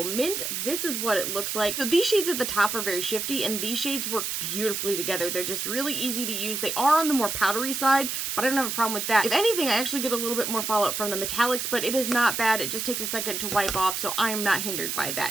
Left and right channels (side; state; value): right; noise; hiss, 2 dB below the sound